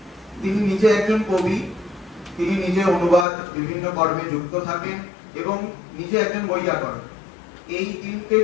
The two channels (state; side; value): drops out; right; at 3.2 s